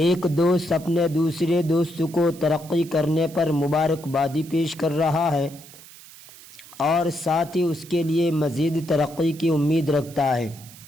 ایک دوست اپنے دوسرے دوست کو ترقی کرنے پر مبارکبادی پیش کر رہا ہے اور ساتھ ہی اس کے لیے مزید ترقی کی امید رکھتا ہے،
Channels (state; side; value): noise; right; hiss, 20 dB below the sound